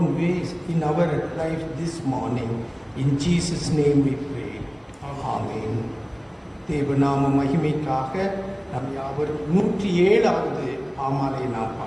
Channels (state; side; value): identical; both; correlation 1.00